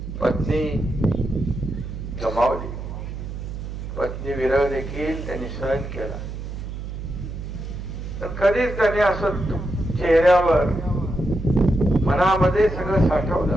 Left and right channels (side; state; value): right; noise; hum, 7 dB below the sound